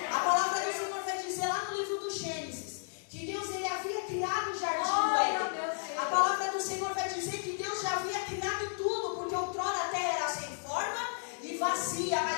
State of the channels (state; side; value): silent; right; digital silence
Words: palavra do Senhor vai dizer lá no livro do Gênesis que Deus, ele havia criado o jardim do Éden. A palavra do Senhor vai dizer que Deus já havia criado tudo, porque outrora a terra era sem forma e vazia,